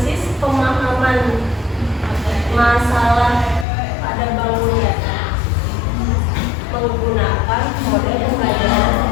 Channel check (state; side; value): drops out; right; at 3.7 s